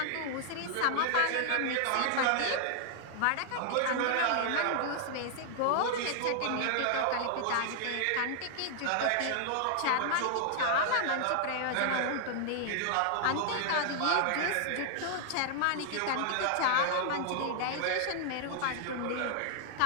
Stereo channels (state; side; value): different; both; correlation 0.00